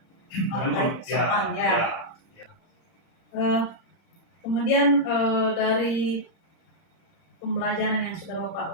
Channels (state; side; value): late; right; 31 ms